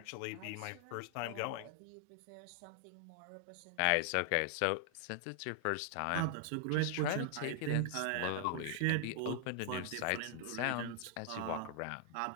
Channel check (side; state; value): both; different; correlation 0.00